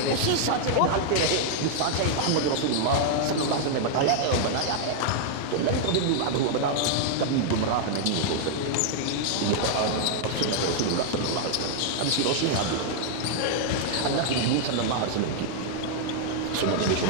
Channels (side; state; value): both; different; correlation -0.01